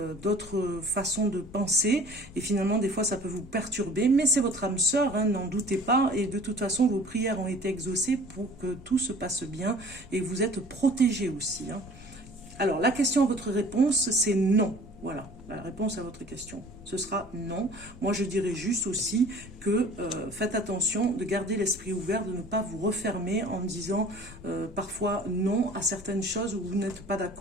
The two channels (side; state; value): left; noise; rumble, 17 dB below the sound